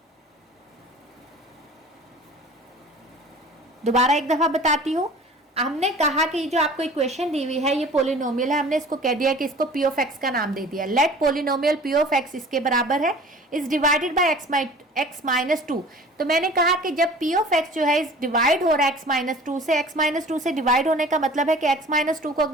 दोबारा एक दफा बताती हूं, हमने कहा कि जो आपको इक्वेशन दी हुई है ये पोलिनोमियल है, हमने इसको कह दिया कि इसको p ऑफ x का नाम दे दिया। Let polynomial p of x इसके बराबर है is divided by x minus 2। तो मैंने कहा कि जब p ऑफ x जो है इस डिवाइड हो रहा है x माइनस 2 से, x माइनस 2 से डिवाइड होने का मतलब है कि x माइनस 2 को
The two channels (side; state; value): both; normal; correlation 0.45